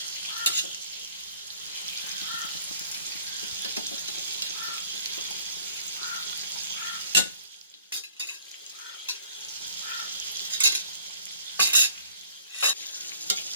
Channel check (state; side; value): inverted; both; correlation -0.57